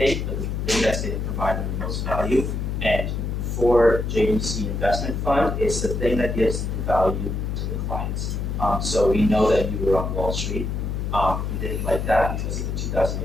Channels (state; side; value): noise; left; hum, 2 dB below the sound